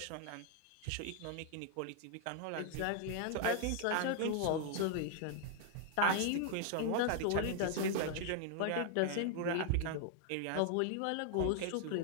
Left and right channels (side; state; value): both; different; correlation 0.00